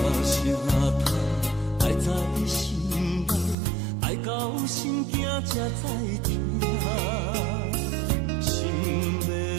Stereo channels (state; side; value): drops out; left; at 3.6 s